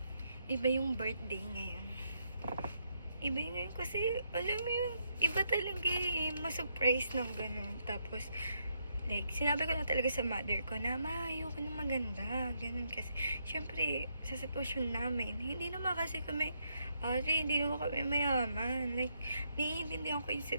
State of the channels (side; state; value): both; inverted; correlation -0.77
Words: iba yung birthday ngayon. Iba yung ngayon kasi, alam mo yun, iba talaga ma-surprise ng ganun. Tapos, like, sinabi ko na talaga sa mother ko na, ma, ayoko na maganda. Ganun kasi, syempre, sa sitwasyon namin, hindi naman kasi kami, hindi naman kami mayaman. Like, naiintindihan ko yung